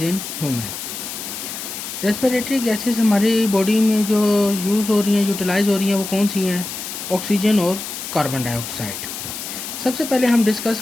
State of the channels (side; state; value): left; noise; hiss, 8 dB below the sound